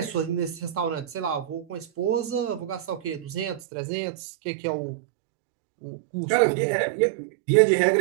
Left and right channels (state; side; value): drops out; left; at 3.6 s